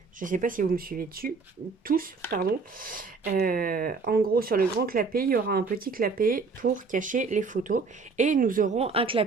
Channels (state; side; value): quieter; left; 4.5 dB